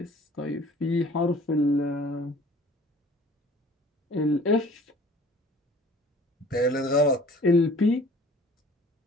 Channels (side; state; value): both; normal; correlation 0.49